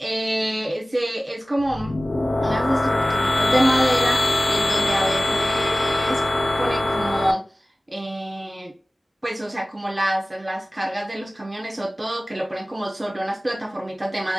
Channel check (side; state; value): both; normal; correlation 0.97